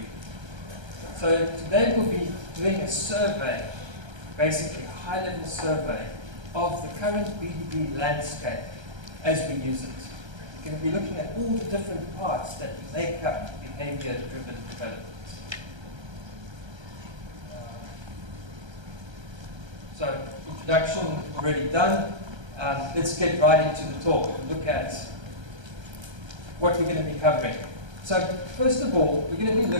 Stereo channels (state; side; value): late; left; 1.3 ms